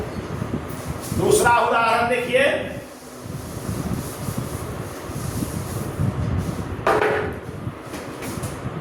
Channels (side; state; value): both; identical; correlation 1.00